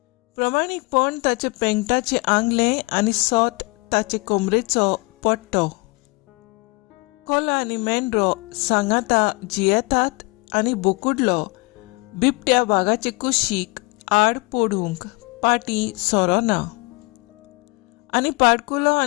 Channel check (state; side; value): quieter; right; 26.6 dB